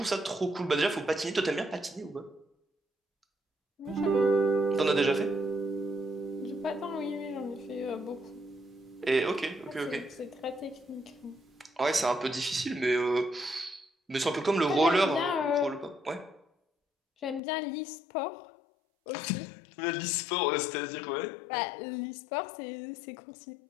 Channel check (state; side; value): drops out; right; at 17.4 s